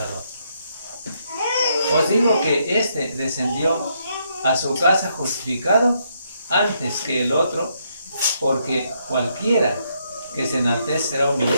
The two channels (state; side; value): inverted; both; correlation -0.76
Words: Os digo que éste descendió a su casa justificado antes que el otro, porque cualquiera que se enaltece será